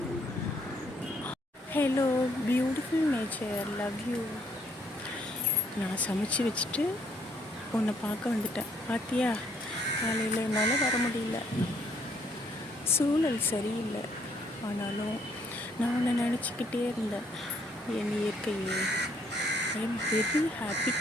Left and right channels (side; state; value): both; normal; correlation 0.68